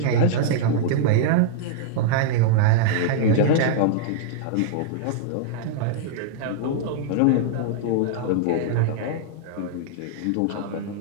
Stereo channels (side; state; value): both; different; correlation -0.01